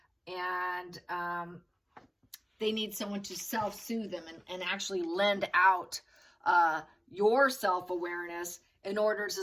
and they need someone to self-soothe them and actually lend out your self-awareness in order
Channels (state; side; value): identical; both; correlation 1.00